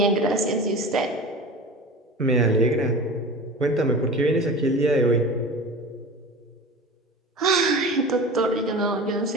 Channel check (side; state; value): both; normal; correlation 0.34